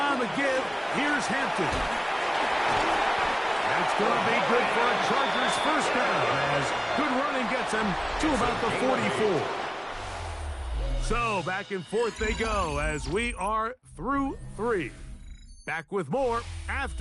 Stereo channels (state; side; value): identical; both; correlation 1.00